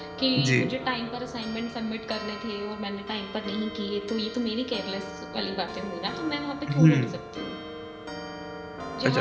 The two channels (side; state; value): both; identical; correlation 1.00